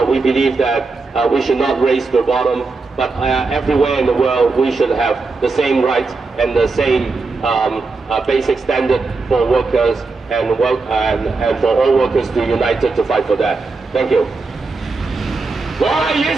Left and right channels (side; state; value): left; quieter; 4.0 dB